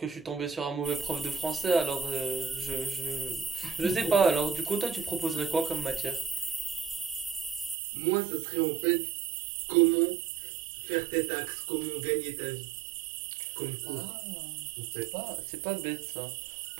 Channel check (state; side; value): drops out; left; at 7.8 s